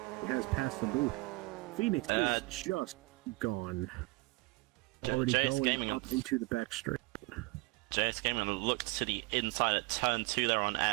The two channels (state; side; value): quieter; left; 25.0 dB